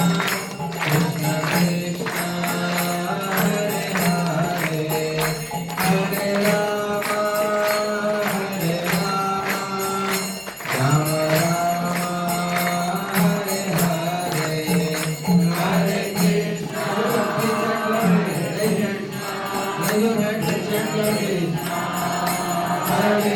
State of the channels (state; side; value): identical; both; correlation 1.00